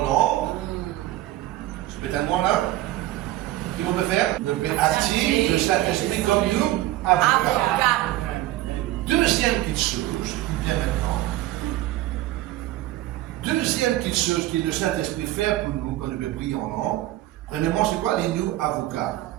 langue. Je peux tellement là. Qu'est-ce qu'on peut faire? On peut activer le Saint-Esprit comme nous avocats. Deuxième petite chose qui vient maintenant. Deuxième petite chose que le Saint-Esprit fait pour nous quand nous peut prier en langue. Premièrement, c'est quoi les nous avocats?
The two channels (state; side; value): quieter; left; 15.9 dB